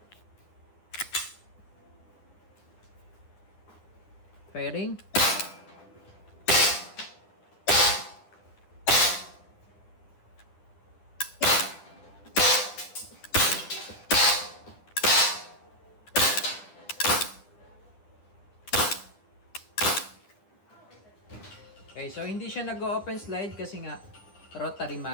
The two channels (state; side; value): late; right; 10 ms